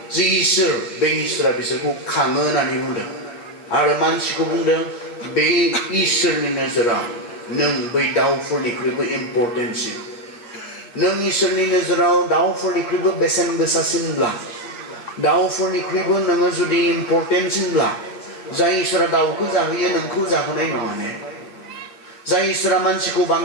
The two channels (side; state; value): right; late; 8.5 ms